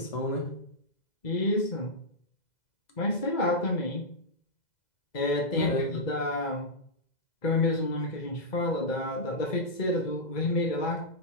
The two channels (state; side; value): late; right; 2.0 ms